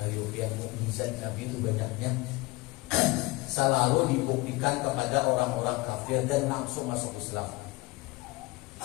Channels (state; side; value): quieter; right; 22.1 dB